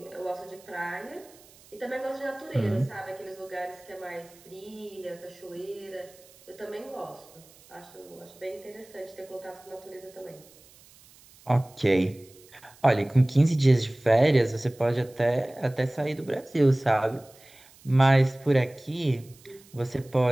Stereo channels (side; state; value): right; noise; hiss, 25 dB below the sound